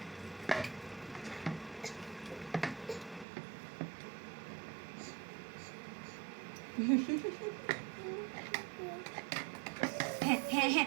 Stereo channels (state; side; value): drops out; left; at 3.2 s